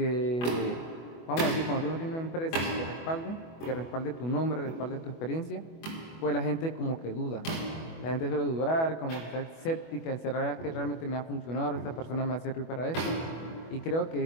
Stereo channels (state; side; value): late; right; 24 ms